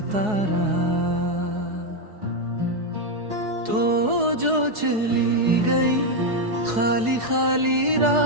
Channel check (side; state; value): left; late; 4.7 ms